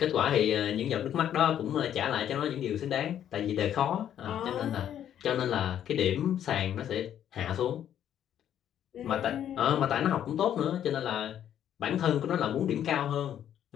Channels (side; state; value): right; quieter; 10.3 dB